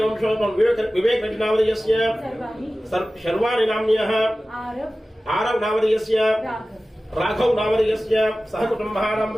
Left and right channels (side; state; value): both; normal; correlation 0.96